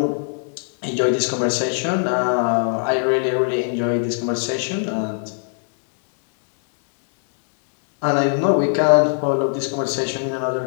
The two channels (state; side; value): silent; right; digital silence